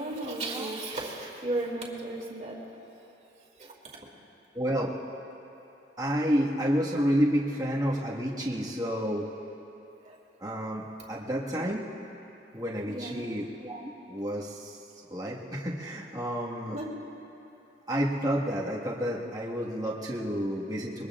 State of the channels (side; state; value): both; normal; correlation 0.75